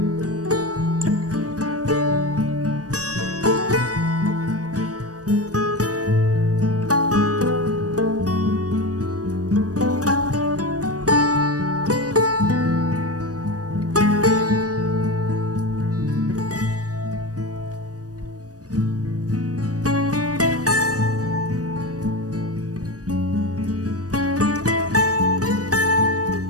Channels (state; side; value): late; left; 0.67 ms